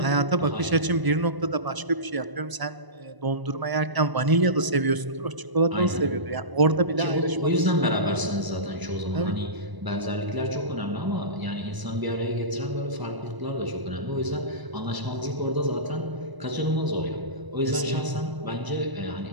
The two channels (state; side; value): late; left; 1.0 ms